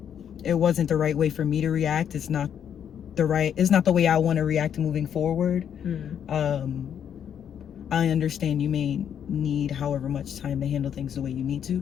it wasn't the right way for me to react. It's not the way I want to react moving forward. I understand you may need however much time to handle things the way you need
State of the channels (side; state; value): right; quieter; 8.8 dB